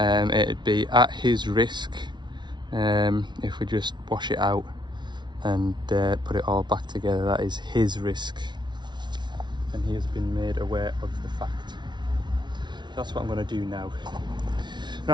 be at his risk if we just wash it out and put it all back together. That is his risk, and he has been made aware of the fact. That's what I'm going to do now.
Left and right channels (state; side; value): late; left; 0.21 ms